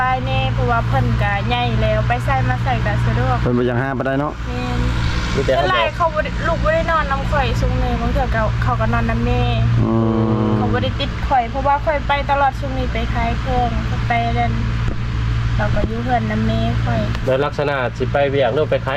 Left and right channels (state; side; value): identical; both; correlation 1.00